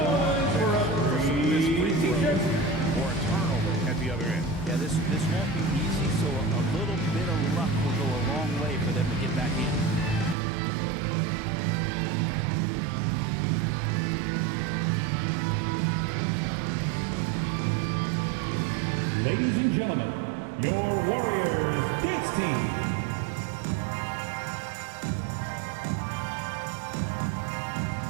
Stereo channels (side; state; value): left; drops out; at 10.4 s